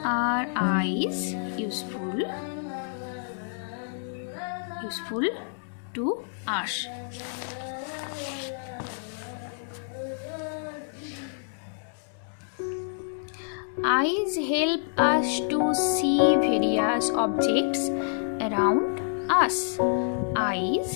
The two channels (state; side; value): silent; right; digital silence